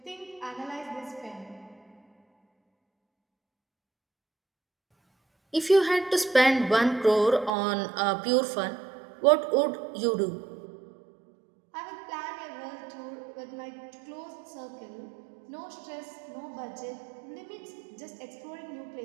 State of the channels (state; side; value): drops out; left; at 7.5 s